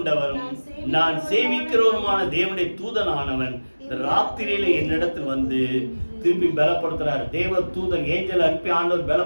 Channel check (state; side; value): inverted; both; correlation -1.00